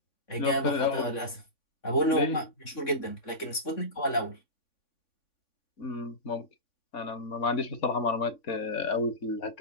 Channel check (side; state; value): right; late; 3.5 ms